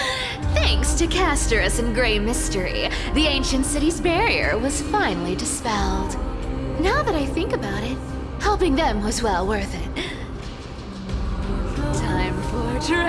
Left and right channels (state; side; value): identical; both; correlation 1.00